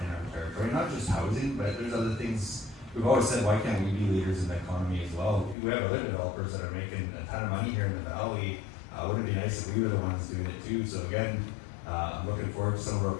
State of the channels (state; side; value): drops out; right; at 5.6 s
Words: territory, not just housing, but there's other things. We've always said, why can't we be leaders in the economy as well? We have other developers that are making a ton of money here in the valley. Wouldn't it be nice if we were the ones doing it too? So again, I'm looking forward to some of our